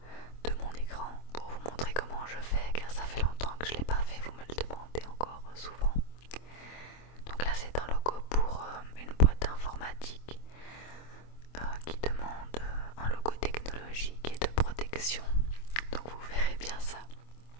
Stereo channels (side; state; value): right; late; 25 ms